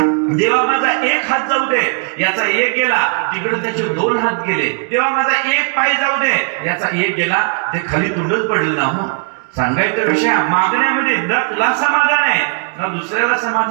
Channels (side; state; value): left; quieter; 39.5 dB